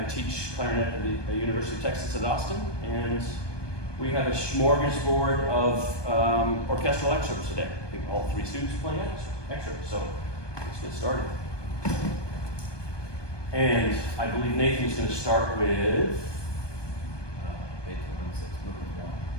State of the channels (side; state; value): right; late; 1.2 ms